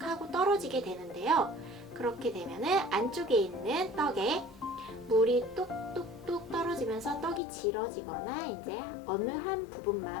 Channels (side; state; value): right; drops out; at 7.4 s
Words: 하고 떨어지게 되는데요. 그렇게 되면은 안쪽에 있는 떡에 물이 뚝뚝뚝 떨어지면서 떡이 질어지거나 이제 어느 한